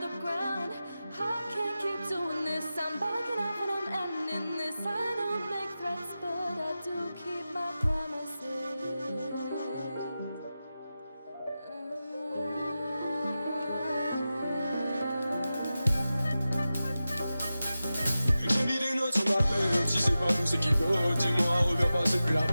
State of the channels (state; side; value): inverted; both; correlation -0.94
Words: the ground. I can't keep doing this. I'm backing up and I'm ending this. I don't make threats, but I do keep my promises. J'ai mis des notes sur ma peine. Si c'est pas nous, c'est qui d'autre? Dis-moi, reviens pas, c'est plus la